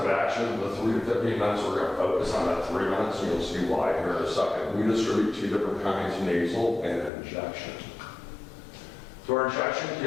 action, the 3 to 15 minutes, we're going to focus on that 3 minutes, and you'll see why here in a second. We distribute 2 different kinds, nasal and injection. So our injection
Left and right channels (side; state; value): right; drops out; at 7.1 s